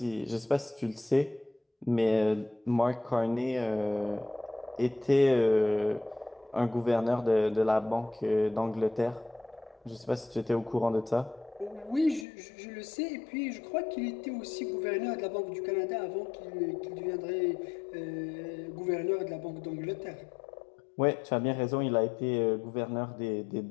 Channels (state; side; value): drops out; right; at 12.2 s